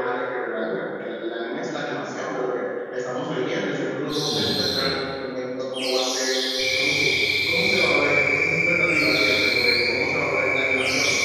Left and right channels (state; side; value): identical; both; correlation 1.00